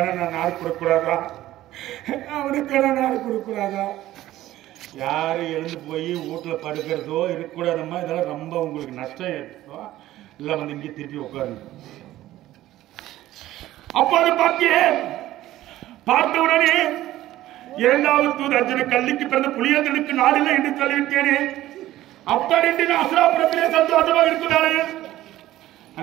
நான் நாடு கொடுக்கூடாதா? யாரு எழுந்து போய் வீட்டுல படுக்கிறதோ இருக்கக்கூடாதம்மா. இதெல்லாம் ரொம்ப உங்களுக்கு நஷ்டம் ஏற்படும். இல்ல வந்து இங்கே திருப்பி உட்காருங்க. அப்போது பார்த்த உடனே இரண்டாவது தூது அர்ஜுன கல்லிக்கு பிறந்த புலியேந்திரனுக்கு நாடில்லை என்று சொல்லிவிட்டேனே. அப்படி என்று அசுராபுரத்திலே சந்தோஷமாக இருக்கிறாரே.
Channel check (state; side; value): quieter; left; 14.8 dB